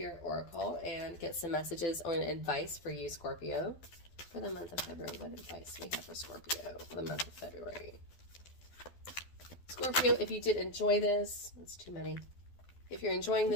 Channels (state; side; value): late; right; 12 ms